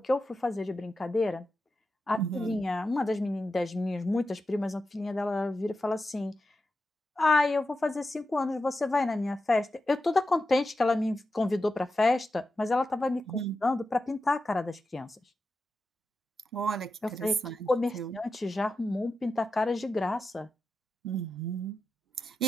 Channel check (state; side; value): normal; both; correlation 0.90